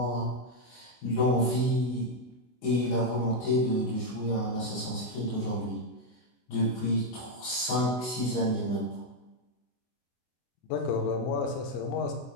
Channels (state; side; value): late; right; 24 ms